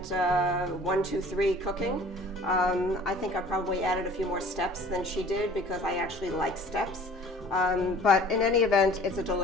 1, 2, 3 cooking. I think I probably added a few more steps than she did because I actually like steps. But in any event, it's a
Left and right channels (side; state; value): both; normal; correlation 0.48